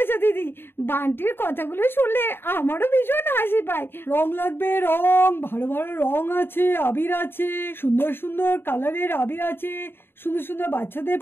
দিদি, বান্টির কথাগুলো শুনলে আমারও ভীষণ হাসি পায়। রং লাগবে, রং, ভালো ভালো রং আছে, আবির আছে, সুন্দর সুন্দর কালারের আবির আছে, সুন্দর সুন্দর বাচ্চাদের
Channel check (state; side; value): late; right; 0.11 ms